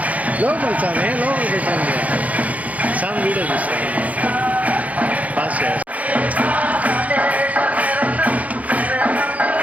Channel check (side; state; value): left; late; 0.071 ms